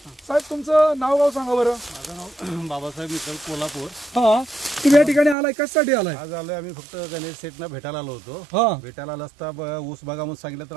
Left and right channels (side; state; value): left; drops out; at 5.4 s